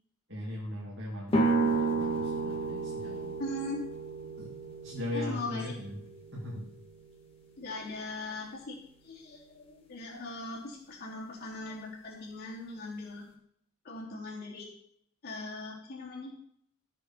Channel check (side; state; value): both; normal; correlation 0.41